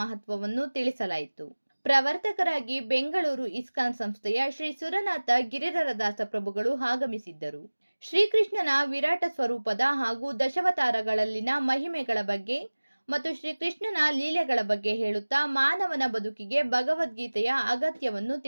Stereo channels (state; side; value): inverted; both; correlation -1.00